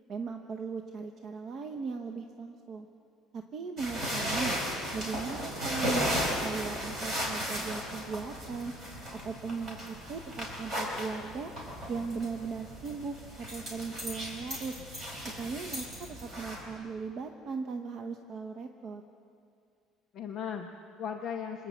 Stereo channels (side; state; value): both; normal; correlation 0.61